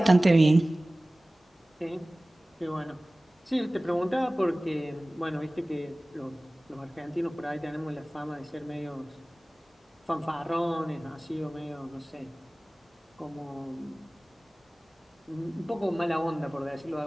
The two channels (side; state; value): both; normal; correlation 0.98